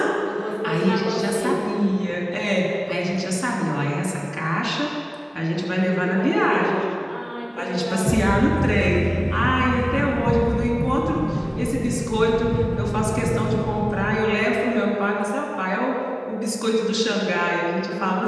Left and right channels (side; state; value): both; identical; correlation 1.00